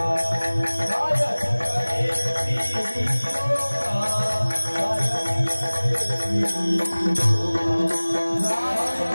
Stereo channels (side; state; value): both; inverted; correlation -1.00